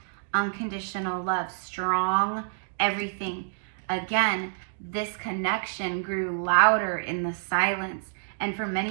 unconditional love, strong everything. Again, this connection grew louder in the silence. And for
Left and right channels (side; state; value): left; silent; digital silence